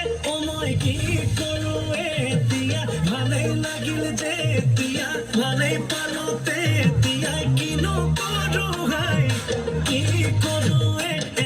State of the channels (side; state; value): both; identical; correlation 1.00